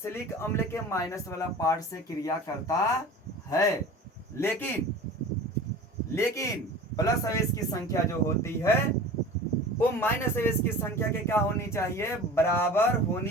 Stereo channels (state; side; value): normal; both; correlation 0.38